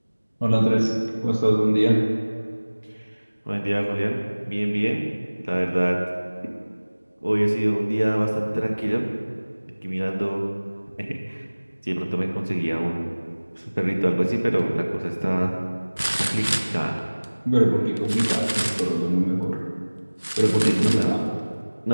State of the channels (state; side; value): inverted; both; correlation -1.00